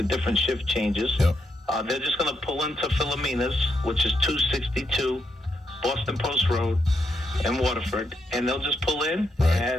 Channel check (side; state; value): both; normal; correlation 0.80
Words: different shift changes, they're just going to pull into Philomena's, which is 262 Boston Post Road in Waterford, and they'll just pull in